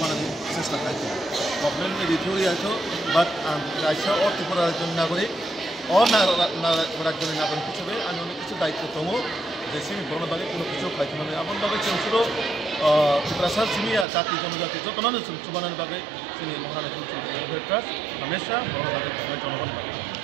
চেষ্টা खालामो गभर्नमेंट एडिटोरियालखौ बात रायसा और त्रिपुरा रायजोनि नागरिक और रायजोनि नागरिक हिसाबै आंनि अनेक কিছু दायित्व दङ যে सिनि बरनो बागै কোনো কিছু खालामनो आबन बागै जों सुरु त्रिपुरा सिमिया जाति जनजाति जतनानो जों सुबानानि बागै जोंनि महारानी तुलसीबती वेलफेयार ट्रास्ट हमेशा बरनो बागै खालामनाय जनगण बागै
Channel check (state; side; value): drops out; left; at 14.1 s